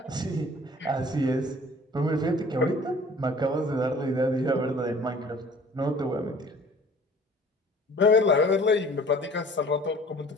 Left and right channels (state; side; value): normal; both; correlation 0.49